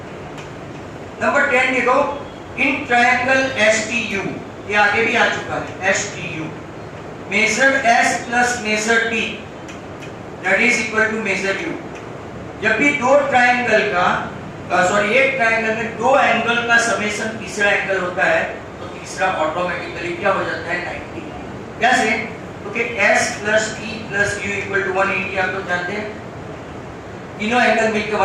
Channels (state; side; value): identical; both; correlation 1.00